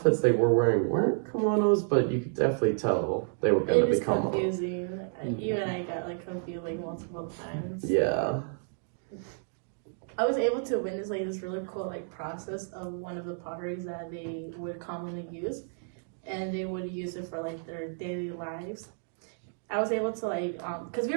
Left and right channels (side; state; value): left; silent; digital silence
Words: they were wearing weren't kimonos, but you could definitely tell they were going to become confusing. You and I got like confused like multiple times. Yeah. I was able to witness like this really cool like process of one of the potteries that they would commonly use, and they would use it for like their daily lives. I was able to like because we